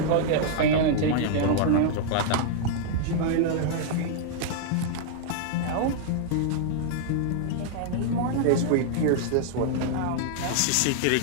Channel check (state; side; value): different; both; correlation -0.01